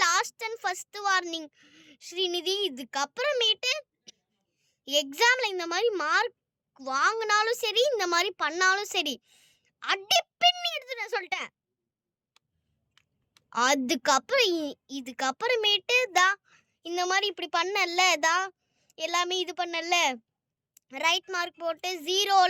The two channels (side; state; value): both; identical; correlation 1.00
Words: last and first warning Srinidhi. இதுக்கப்புறமேட்டு எக்ஸாம்ல இந்த மாதிரி மார்க் வாங்கினாலும் சரி, இந்த மாதிரி பண்ணாலும் சரி, அடி பின்னி எடுத்துட்டேன் சொல்லிட்டேன். அதுக்கப்புறம் இதுக்கப்புறமேட்டு தான் இந்த மாதிரி இப்படி பண்ணல தான் எல்லாமே இது பண்ணல ரைட் மார்க் போட்டு